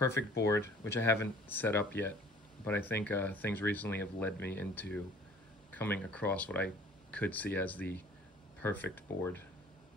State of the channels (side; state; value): both; normal; correlation 0.51